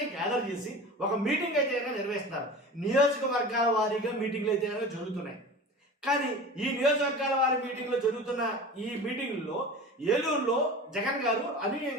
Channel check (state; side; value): normal; both; correlation 0.35